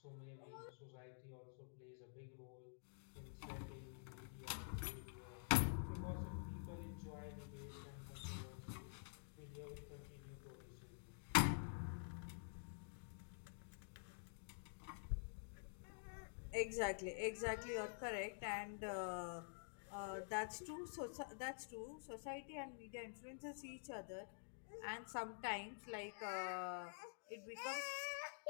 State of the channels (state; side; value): silent; right; digital silence